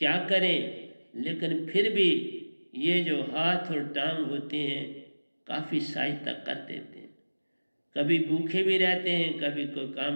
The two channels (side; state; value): both; inverted; correlation -1.00